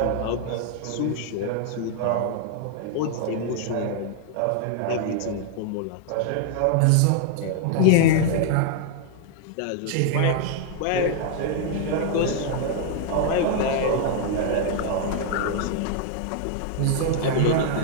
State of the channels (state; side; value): different; both; correlation 0.00